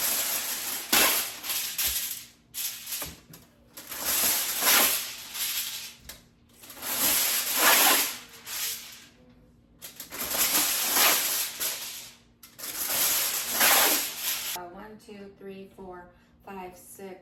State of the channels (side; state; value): both; identical; correlation 1.00